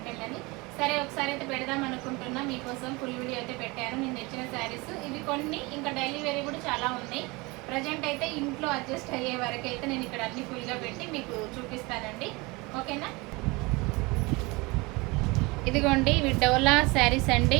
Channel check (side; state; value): left; quieter; 24.8 dB